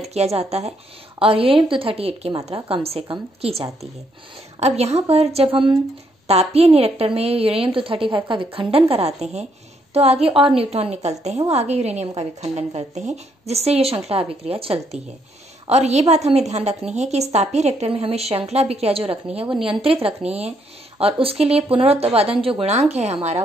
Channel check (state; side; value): normal; both; correlation 0.73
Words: किया जाता है, और यूरेनियम 238 की मात्रा कम से कम की जाती है। अब यहाँ पर जब हम तापीय रिएक्टर में यूरेनियम 235 का विखंडन कराते हैं तो आगे और न्यूट्रॉन निकलते हैं, वो आगे यूरेनियम का विखंडन करते हैं, जिससे ये श्रृंखला अभिक्रिया चलती है। और ये बात हमें ध्यान रखनी है कि इस तापीय रिएक्टर में हमें श्रृंखला अभिक्रिया जो रखनी है वो नियंत्रित रखनी है, और उसके लिए पुनरुत्पादन जो गुणांक है हमारा